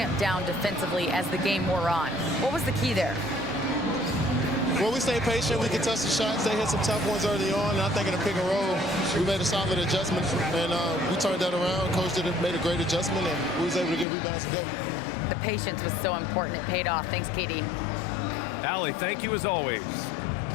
down defensively as the game wore on. What was the key there? Well, we stayed patient. We contested shots. They hit some tough ones early on. And I think in the pick and roll, we made a solid adjustment. And we turned that around. Coach made a great adjustment, and we was able to get rebounds and go. The patience was so important. It paid off. Thanks, KD. Allie, thank you as always.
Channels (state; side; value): drops out; right; at 14.1 s